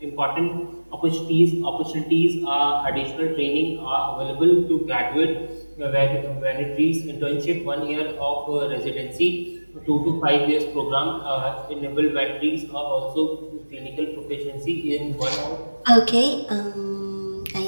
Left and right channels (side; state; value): both; inverted; correlation -1.00